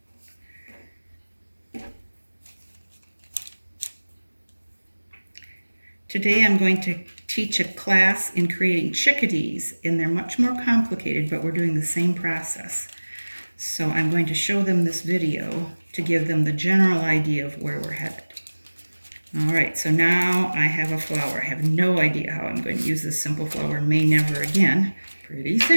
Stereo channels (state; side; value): inverted; both; correlation -1.00